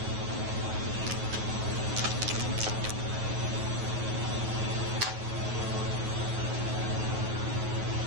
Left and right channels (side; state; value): left; late; 9.4 ms